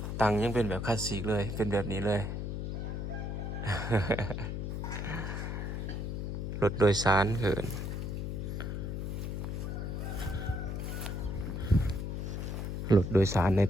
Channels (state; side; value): noise; left; hum, 3 dB below the sound